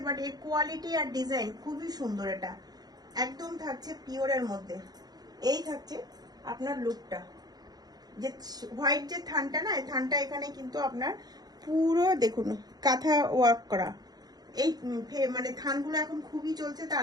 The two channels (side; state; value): left; late; 0.19 ms